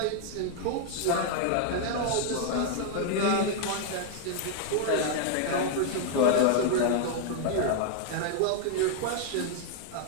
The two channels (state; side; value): different; both; correlation 0.00